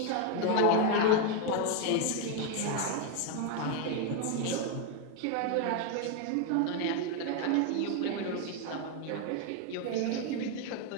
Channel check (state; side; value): different; both; correlation 0.01